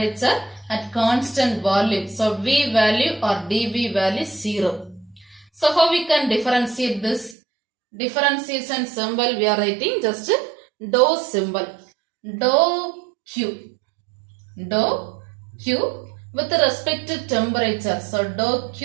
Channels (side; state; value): left; drops out; at 7.4 s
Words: at constant volume. So V value or dV value is 0. So how we can differentiate this? Differentiation symbol we are writing just dou symbol. Dou Q. Dou Q with respect to temperature. So dou